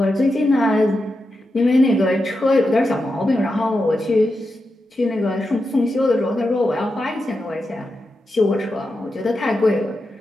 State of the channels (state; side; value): normal; both; correlation 0.88